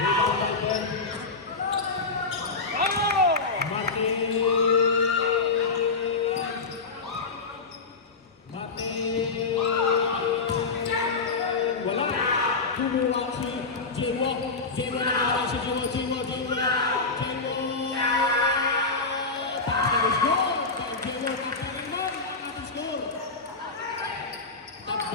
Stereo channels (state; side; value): quieter; right; 4.1 dB